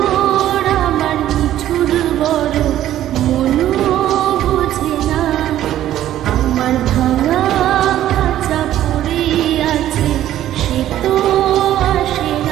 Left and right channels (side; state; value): left; quieter; 12.6 dB